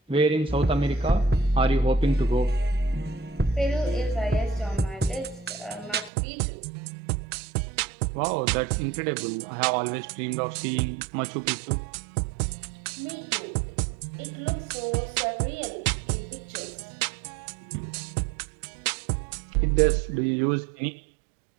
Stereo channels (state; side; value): drops out; left; at 6.1 s